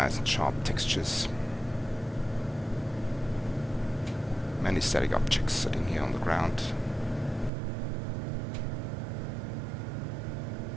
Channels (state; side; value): drops out; left; at 7.5 s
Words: and sharp textures. Many static objects sitting here on the ground.